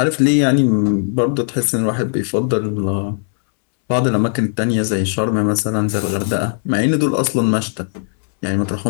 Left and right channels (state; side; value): silent; right; digital silence